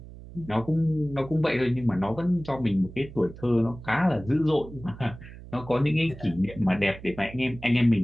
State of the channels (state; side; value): noise; right; hum, 16 dB below the sound